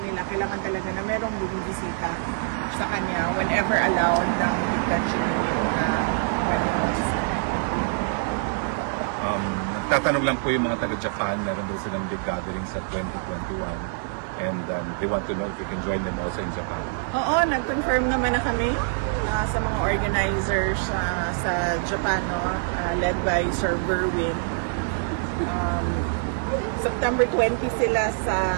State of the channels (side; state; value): left; silent; digital silence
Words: kailangan talaga na merong bumibisita sa kanya whenever allowed ng detention unit na pwede magbisita. Nagtatanong lang po yung mga taga-Japan, meron daw silang big gathering sa 2021 and they want to know if you can join them also in Japan. Oo, nag-confirm naman na kami sa mga organizers sa Japan, led by Sir Berwin. September 20 sila